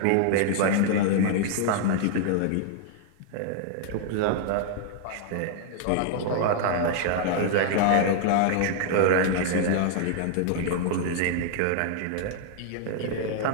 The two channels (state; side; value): different; both; correlation -0.01